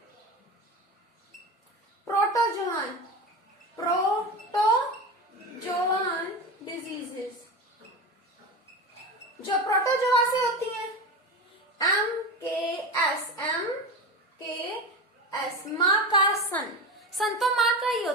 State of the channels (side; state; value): both; normal; correlation 0.24